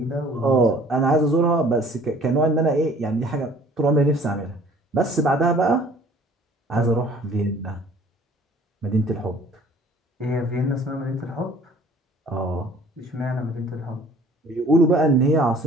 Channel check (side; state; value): both; normal; correlation 0.53